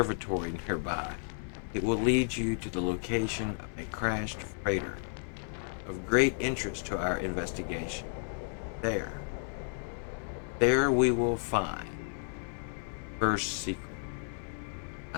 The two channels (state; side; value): silent; right; 56 dB below the other